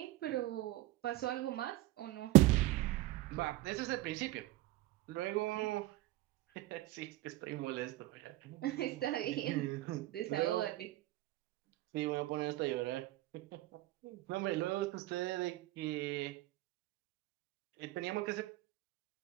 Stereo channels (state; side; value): quieter; left; 17.4 dB